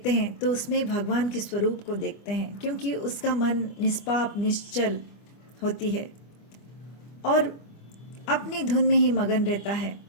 हैं तो उसमें भगवान के स्वरूप को देखते हैं, क्योंकि उसका मन निष्पाप निश्चल होती है और अपनी धुन में ही मगन रहता है।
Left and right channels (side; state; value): right; late; 25 ms